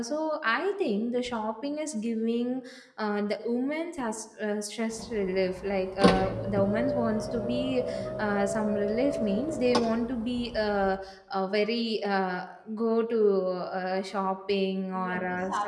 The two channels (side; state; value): both; identical; correlation 1.00